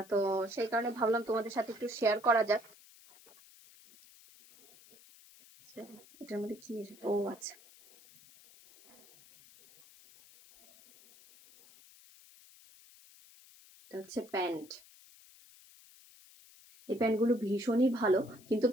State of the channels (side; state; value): left; noise; hiss, 24 dB below the sound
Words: তো সেই কারণে ভাবলাম তোমাদের সাথে একটু শেয়ার করা যাক। এটার মধ্যে কি এসেছে? ও আচ্ছা, এটা হচ্ছে প্যান্ট। এই প্যান্টগুলো ভীষণই ভালো, কিন্তু